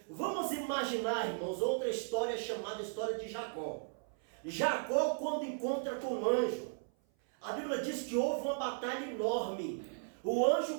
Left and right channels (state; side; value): silent; left; 54 dB below the other